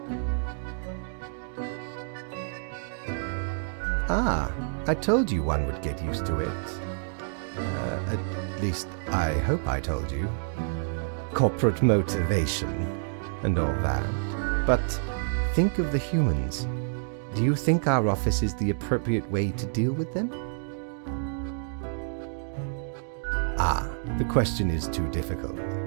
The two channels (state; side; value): silent; left; digital silence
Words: Ah, I told you one would get used to it. At least, I hope I told you. Corporate motivation and all that. But think of the humans. Do you think our office is the appropriate way to deal with them? Ah, the question is too difficult.